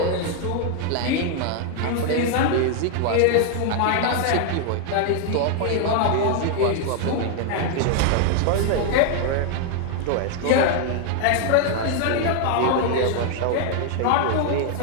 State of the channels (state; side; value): different; both; correlation 0.00